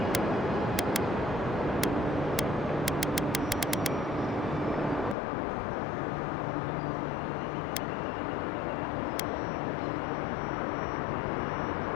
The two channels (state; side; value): drops out; right; at 5.2 s